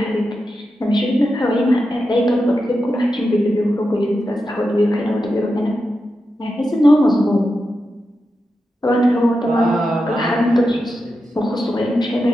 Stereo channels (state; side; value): normal; both; correlation 0.89